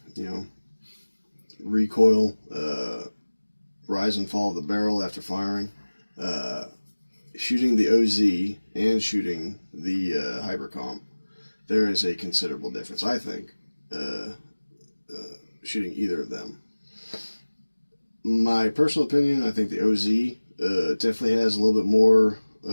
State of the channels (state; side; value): inverted; both; correlation -1.00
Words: recoil, rise and fall of the barrel after firing. Shooting the OZ and shooting the Hypercomp, there is a considerable difference, I think, shooting either of them. My personal opinion, I think the OZ definitely has a little bit more,